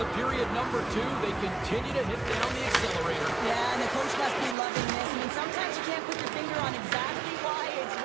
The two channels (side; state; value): left; drops out; at 4.5 s